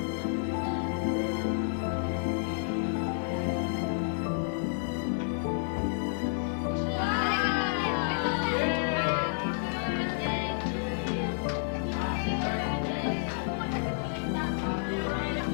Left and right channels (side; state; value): right; silent; digital silence